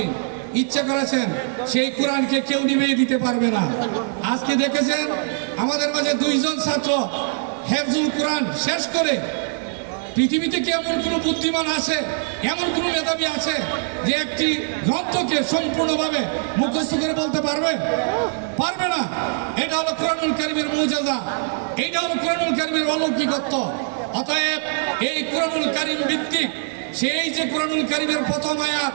ইচ্ছা করেছেন সেই কোরআনকে কেউ নিভিয়ে দিতে পারবে না। আজকে দেখেছেন আমাদের মাঝে 2 জন ছাত্র হেফজুল কোরআন শেষ করে, পৃথিবীতে কি এমন কোনো বুদ্ধিমান আছে, এমন কোনো মেধাবী আছে যে একটি গ্রন্থকে সম্পূর্ণভাবে মুখস্থ করে বলতে পারবে? পারবে না। এটা হলো কোরআনুল কারীমের মুজিজা, এটা হলো কোরআনুল কারীমের অলৌকিকত্ব। অতএব এই কোরআনুল কারীম ভিত্তিক সেই যে কোরআনুল কারীমের প্রথম আয়াত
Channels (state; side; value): silent; left; digital silence